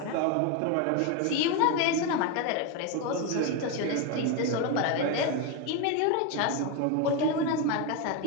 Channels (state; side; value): different; both; correlation 0.02